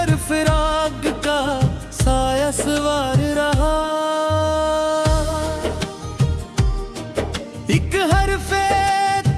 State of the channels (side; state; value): both; identical; correlation 1.00